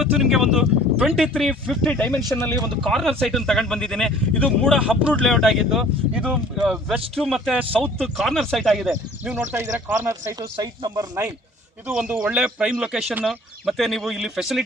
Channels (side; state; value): both; normal; correlation 0.51